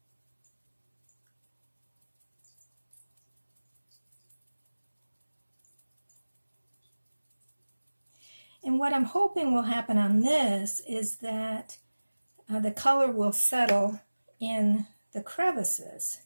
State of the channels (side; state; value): both; inverted; correlation -1.00